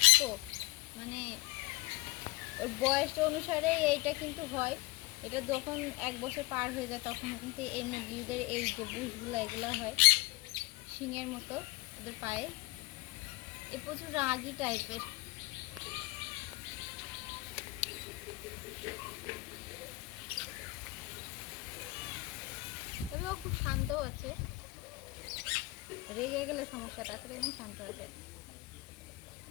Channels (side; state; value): right; quieter; 21.6 dB